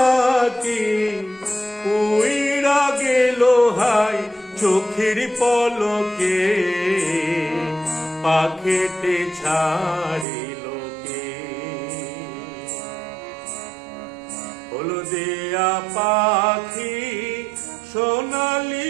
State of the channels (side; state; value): left; drops out; at 10.2 s